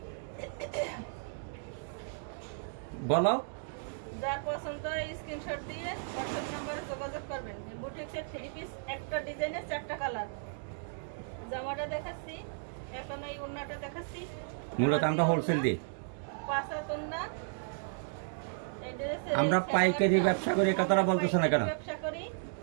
বলো। যার পছন্দ হয় স্ক্রিনশট দিয়ে হোয়াটসঅ্যাপ নম্বরে যোগাযোগ করবেন। বুটিক্সের থ্রি পিস, একটা ডিজাইনের 4টা কালার। জামাটা দেখাচ্ছি, এখন এই ওড়নাটা দেখাচ্ছি। মূলত আমরা হোলসেল দিই। পাঁচাতন্না। আমরা পাইকারি ব্যবসা করি, এই কথাটা বলতেছো না কেন? ব্যবসা করি,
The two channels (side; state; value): left; silent; digital silence